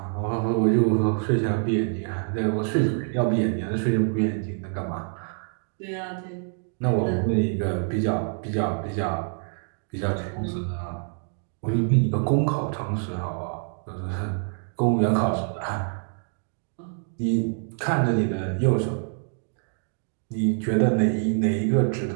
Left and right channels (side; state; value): left; silent; 57 dB below the other